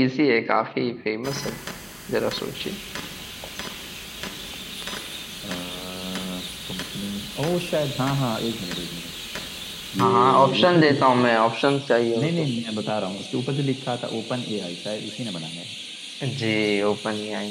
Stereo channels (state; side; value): identical; both; correlation 1.00